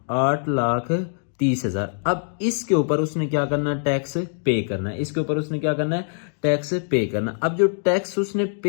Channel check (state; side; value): silent; right; digital silence